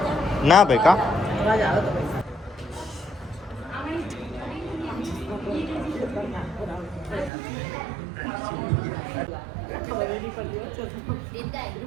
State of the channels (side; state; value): left; drops out; at 7.3 s